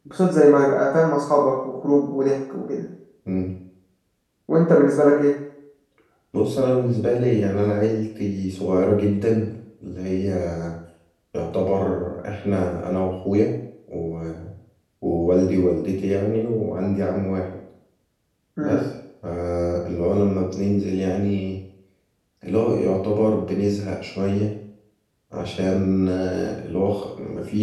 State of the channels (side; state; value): both; identical; correlation 1.00